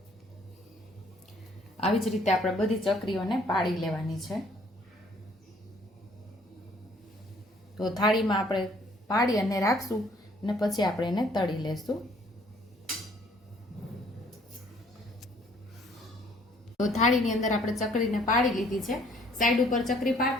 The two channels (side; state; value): both; normal; correlation 0.60